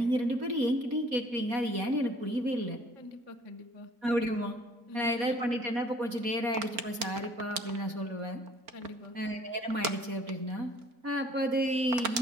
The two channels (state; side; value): late; left; 4.4 ms